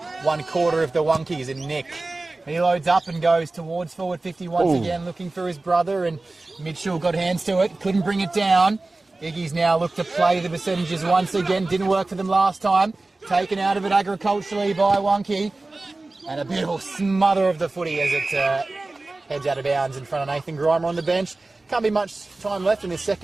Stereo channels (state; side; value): quieter; left; 3.2 dB